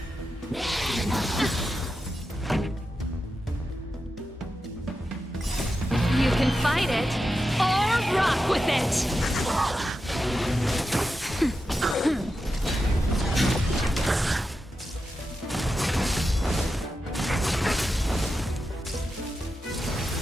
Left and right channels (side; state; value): both; normal; correlation 0.89